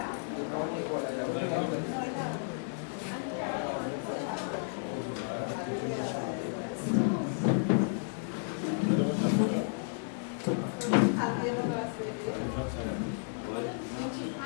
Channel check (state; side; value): silent; right; 56 dB below the other